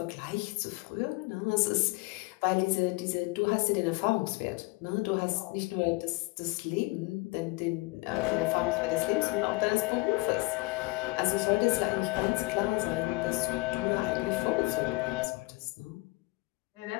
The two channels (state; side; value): quieter; right; 23.7 dB